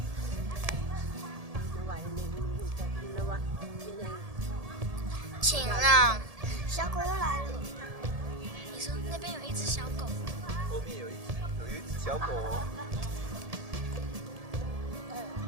请让小狗又来了。你说那边有一只小狗，后面有一只小狗哦。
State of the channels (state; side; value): late; left; 1.7 ms